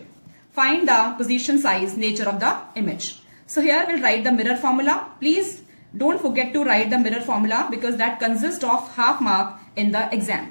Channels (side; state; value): both; inverted; correlation -1.00